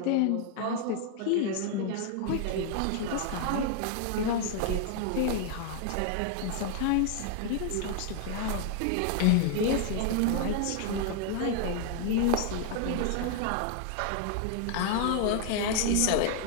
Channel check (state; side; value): different; both; correlation 0.00